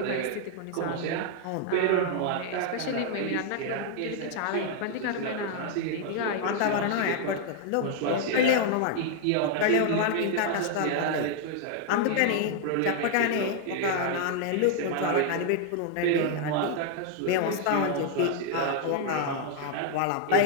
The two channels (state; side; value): different; both; correlation 0.00